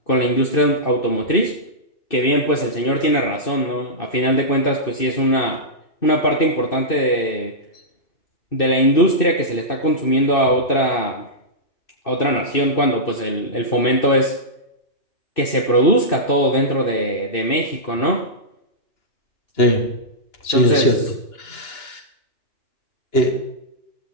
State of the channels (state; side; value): late; right; 2.6 ms